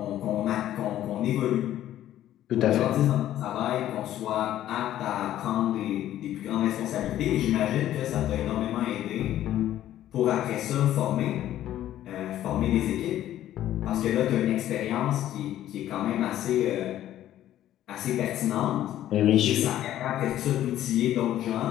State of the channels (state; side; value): quieter; right; 12.6 dB